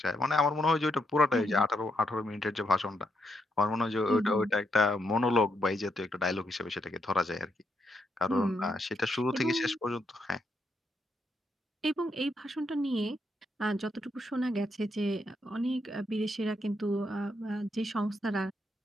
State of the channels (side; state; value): both; normal; correlation 0.79